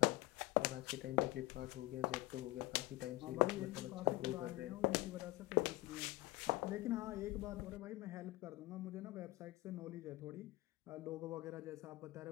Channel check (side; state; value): right; quieter; 20.4 dB